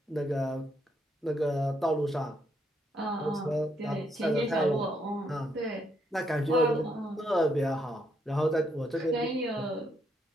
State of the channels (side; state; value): both; normal; correlation 0.75